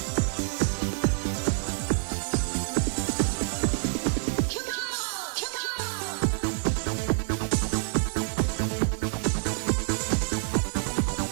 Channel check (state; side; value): silent; left; 60 dB below the other